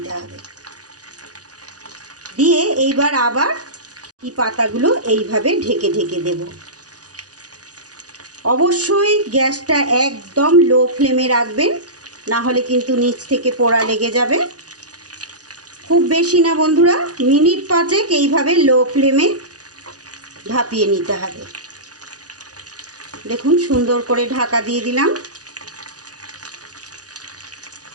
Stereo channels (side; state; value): left; late; 0.68 ms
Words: হবে। দিয়ে এইবার আবার এই পাতাগুলো এইভাবে ঢেকে ঢেকে দেব। অবশ্যই গ্যাসটা একদম লো ফ্লেমে রাখবেন, না হলে কিন্তু নিচ থেকে পোড়া লেগে যাবে। খুব বেশি না বন্ধুরা, মিনিট 5 এইভাবে লো ফ্লেমে ভাপিয়ে নিতে হবে। দেখুন সুন্দর করে ঢাকা দিয়ে দিলাম।